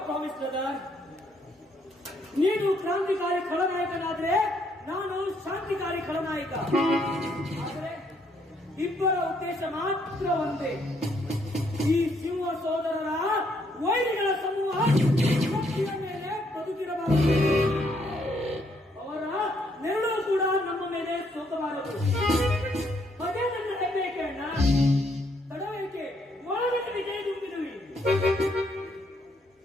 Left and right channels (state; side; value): normal; both; correlation 0.71